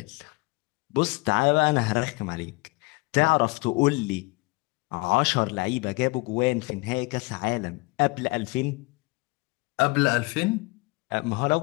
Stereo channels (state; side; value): quieter; right; 26.0 dB